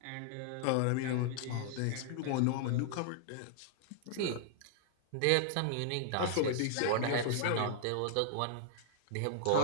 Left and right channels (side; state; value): both; different; correlation -0.01